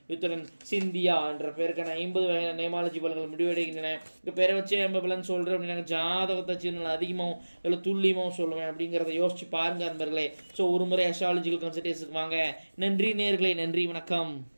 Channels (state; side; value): inverted; both; correlation -1.00